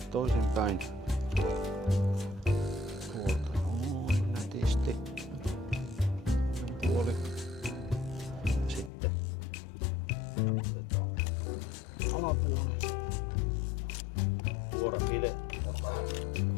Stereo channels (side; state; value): right; drops out; at 8.9 s